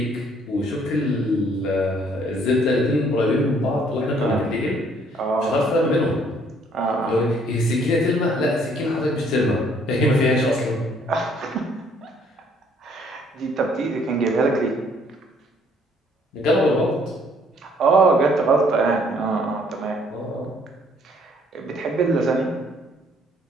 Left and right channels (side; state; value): both; normal; correlation 0.63